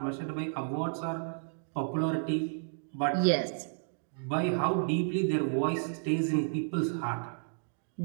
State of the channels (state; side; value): silent; left; digital silence